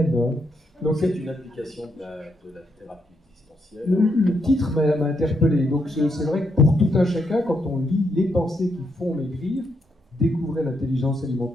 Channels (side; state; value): both; normal; correlation 0.78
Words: Hein. Donc c'est une application de la thérapie existentielle. Le titre m'a interpellé. Donc c'est vrai que pour tout un chacun, quand on lit Les pensées qui font maigrir, découvrez l'intelligence